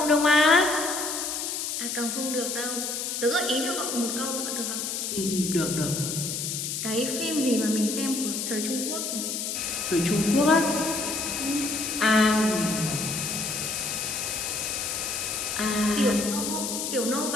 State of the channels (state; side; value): noise; left; hiss, 3 dB below the sound